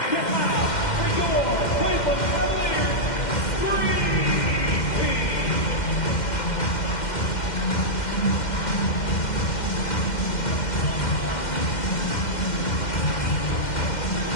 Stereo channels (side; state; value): right; late; 2.1 ms